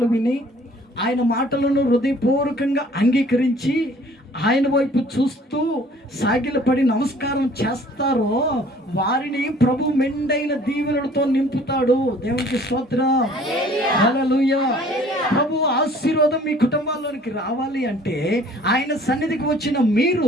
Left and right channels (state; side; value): normal; both; correlation 0.54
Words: విని ఆయన మాటలను హృదయపూర్వకంగా అంగీకరించి ఆయన వైపు చూస్తూ సాగిలపడి నమస్కారం చేస్తారో వారిని ప్రభు మెండైన దీవెనలతో నింపుతాడు. దేవునికి స్తోత్రం, హల్లెలూయా. ప్రభు ఆశీర్వాదం మీ కుటుంబాల్లోనికి రావాలి అంటే ఆయన సన్నిధికి వచ్చిన